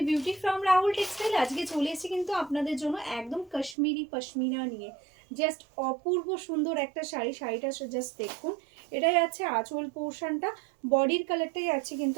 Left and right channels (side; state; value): left; drops out; at 3.8 s